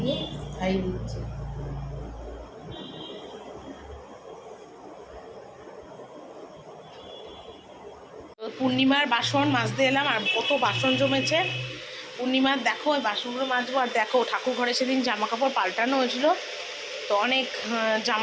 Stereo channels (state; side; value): identical; both; correlation 1.00